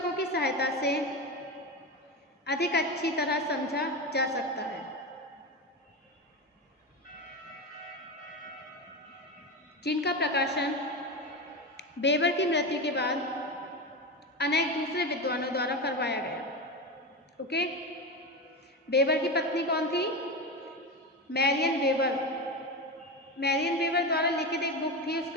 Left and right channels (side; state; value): both; normal; correlation 0.19